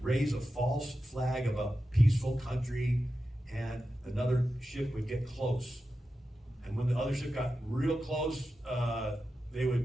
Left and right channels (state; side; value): normal; both; correlation 0.91